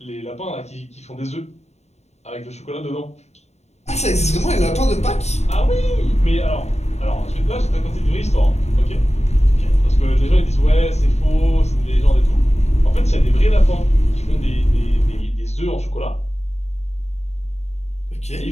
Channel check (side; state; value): right; late; 0.32 ms